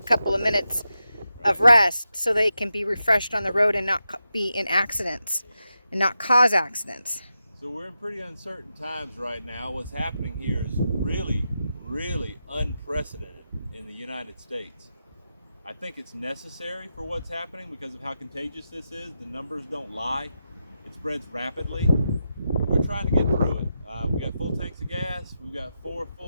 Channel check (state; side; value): inverted; both; correlation -0.88